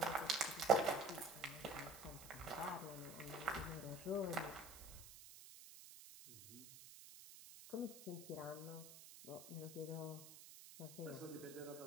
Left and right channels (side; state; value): right; noise; hiss, 14 dB below the sound